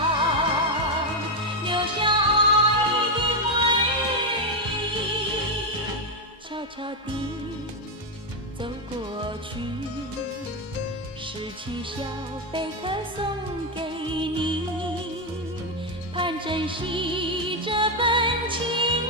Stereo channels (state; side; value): normal; both; correlation 0.05